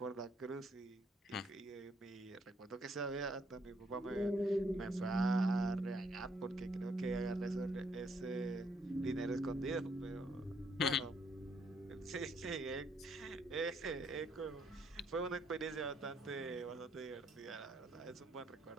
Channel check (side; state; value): both; normal; correlation 0.71